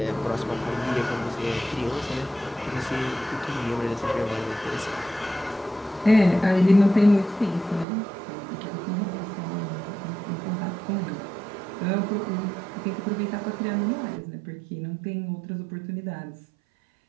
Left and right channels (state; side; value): drops out; left; at 7.9 s